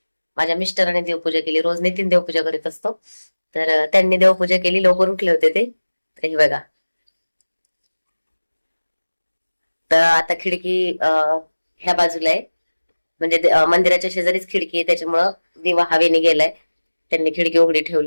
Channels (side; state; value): both; inverted; correlation -1.00